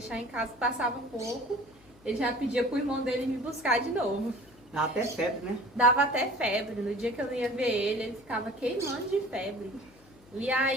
em casa, passava um pouco, ele já pedia pro irmão dele me buscar de novo. Dá até febre, né? Dava até febre. No dia que eu ia ver ele, ele ficava queimando de febre. E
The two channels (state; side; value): noise; left; hum, 26 dB below the sound